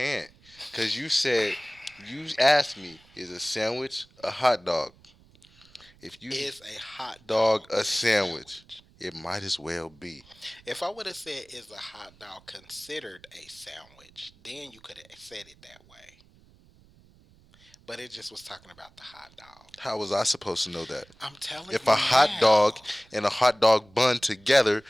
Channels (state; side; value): noise; right; rumble, 28 dB below the sound